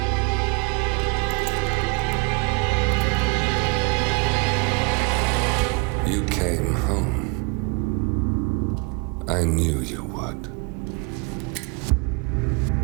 You came home. I knew you would.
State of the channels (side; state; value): left; quieter; 30.5 dB